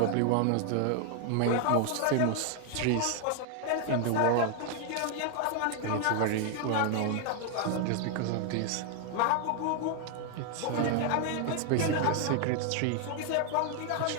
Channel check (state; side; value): different; both; correlation 0.00